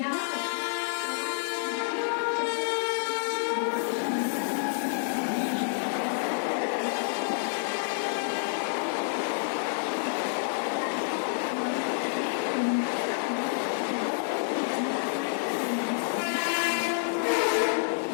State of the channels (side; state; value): right; silent; 59 dB below the other